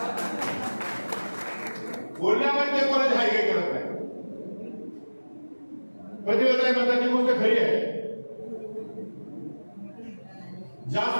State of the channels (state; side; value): inverted; both; correlation -1.00